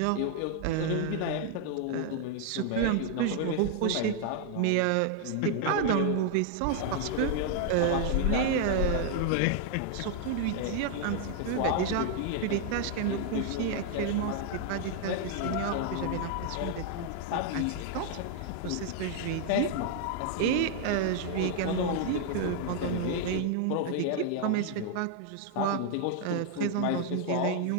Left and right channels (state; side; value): different; both; correlation 0.00